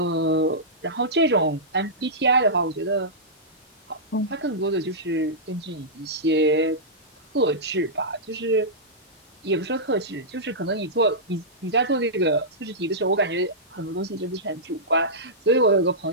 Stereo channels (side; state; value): both; normal; correlation -0.14